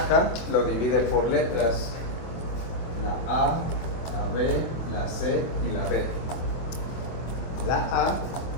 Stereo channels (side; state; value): right; late; 24 ms